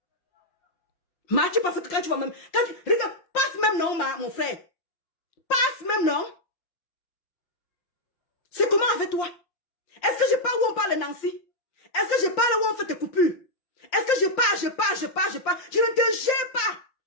Ma, tu penses que quand tu vas même... Regarde, passe même non, mon frère. Passe même non. C'est comment avec toi? Est-ce que je parle où on parle de Nancy? Est-ce que je parle où on fait tes coupures? Est-ce que je parle? Je ne te gère pas.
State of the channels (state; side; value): late; right; 5.7 ms